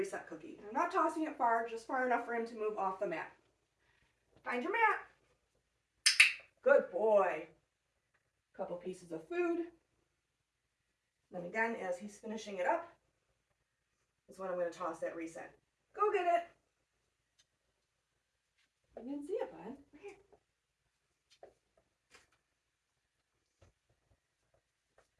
cookie. I'm not tossing it far, just far enough for him to move off the mat. Find your mat. Good boy. Couple pieces of food. Then again, as he's finishing it up, is when I'm going to toss that reset. Go get it. I didn't see it, bud. Right here.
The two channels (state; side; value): identical; both; correlation 1.00